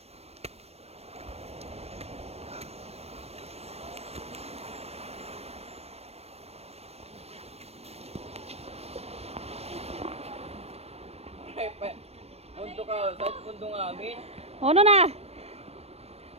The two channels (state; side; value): late; left; 0.30 ms